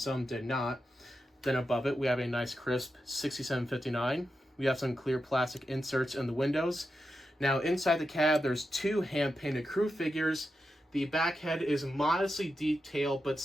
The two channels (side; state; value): both; normal; correlation 0.88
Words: did not. Then above it, we have a nice crisp 6759. We have some clear plastic inserts in the windows. Now, inside the cab, there's 2 hand-painted crew figures. The back head is modestly detailed, but